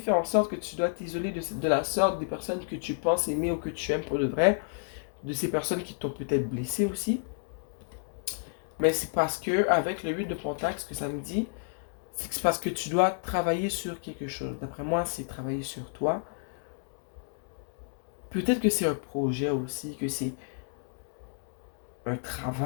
en sorte que tu dois t'isoler de la sorte des personnes que tu penses aimer ou que tu aimes pour de vrai, de ces personnes qui t'ont peut-être blessé aussi. Mais c'est parce que, avec le 8 de Pentacle, ce que ça me dit, c'est que c'est parce que tu dois travailler sur quelque chose. D'après moi, c'est travailler sur toi. Peut-être que c'est un projet aussi, que c'est un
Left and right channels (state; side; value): silent; right; digital silence